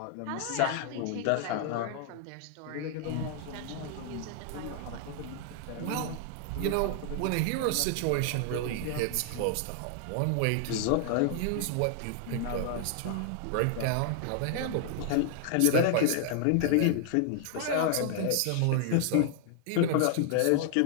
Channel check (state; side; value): different; both; correlation 0.00